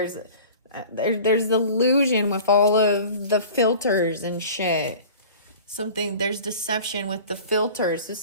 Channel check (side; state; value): both; inverted; correlation -0.41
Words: illusion with all of the filters and shit. There's deception with the filters. So